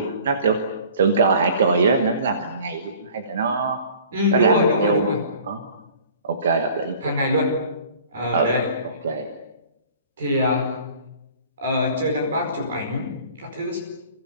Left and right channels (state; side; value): inverted; both; correlation -0.50